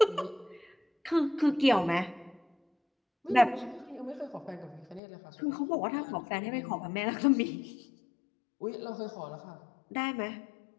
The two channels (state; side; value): drops out; right; at 5.0 s